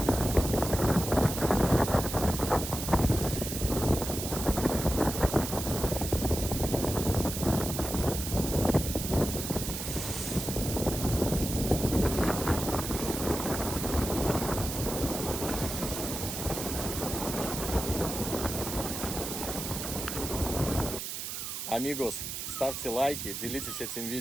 Амигос, ставьте лайки, делитесь этим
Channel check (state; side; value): noise; right; hiss, 5 dB below the sound